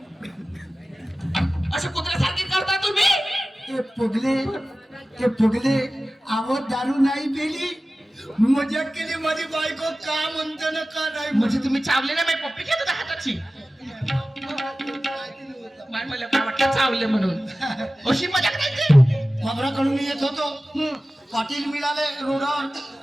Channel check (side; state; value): both; normal; correlation 0.96